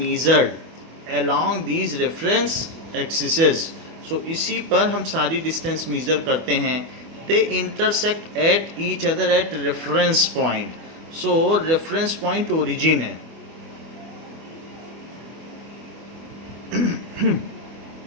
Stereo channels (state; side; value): late; left; 24 ms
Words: along these reference axes. So इसी पर हम सारी डिस्टेंस मेजर करते हैं. They intersect at each other at reference point. So reference point origin है.